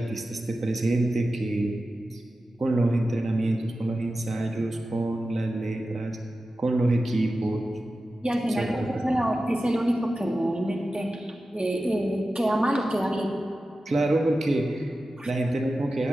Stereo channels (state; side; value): normal; both; correlation 0.93